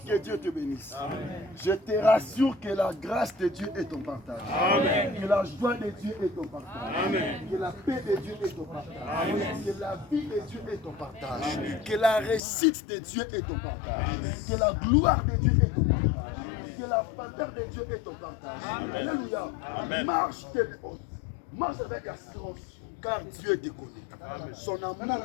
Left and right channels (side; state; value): right; drops out; at 12.4 s